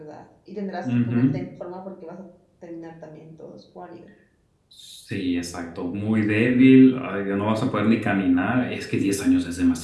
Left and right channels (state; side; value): identical; both; correlation 1.00